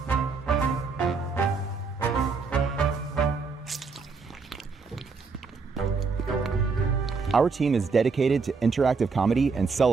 Our team is dedicated to interactive comedy and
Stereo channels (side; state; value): left; quieter; 4.7 dB